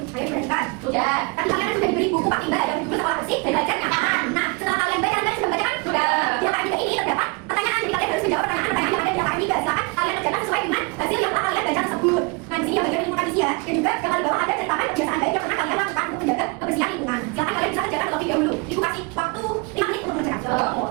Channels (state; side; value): quieter; left; 29.6 dB